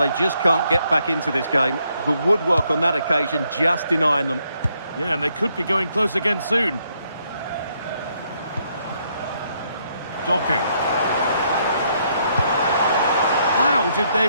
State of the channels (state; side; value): inverted; both; correlation -0.73